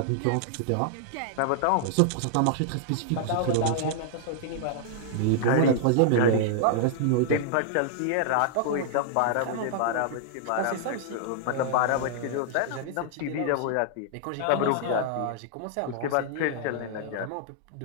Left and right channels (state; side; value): different; both; correlation -0.01